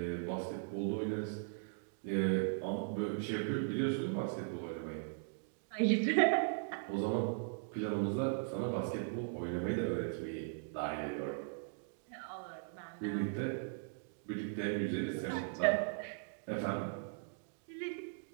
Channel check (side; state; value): left; silent; digital silence